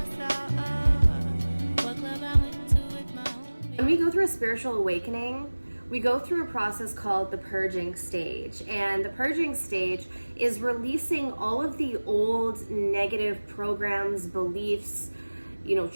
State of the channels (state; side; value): inverted; both; correlation -1.00